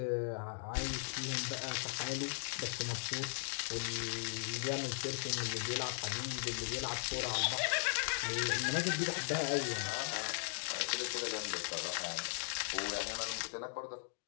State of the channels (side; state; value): right; silent; digital silence